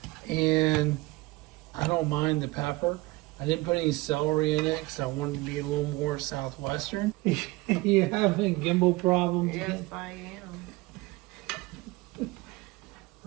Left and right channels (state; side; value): quieter; left; 21.4 dB